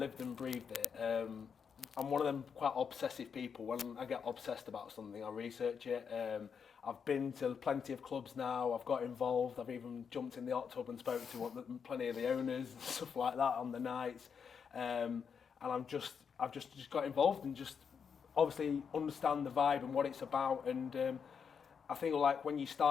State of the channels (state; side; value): quieter; right; 6.6 dB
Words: and breathed it. I'm one of them quite obsessive people. When I get obsessed about something, I research it. I've been to plenty of clubs now. I've got involved. I've even jumped in the hot tub and spoke to plenty of the owners and stuff like that on the nights. And I've just got involved and just obviously understand the vibe and what it's about. And I think when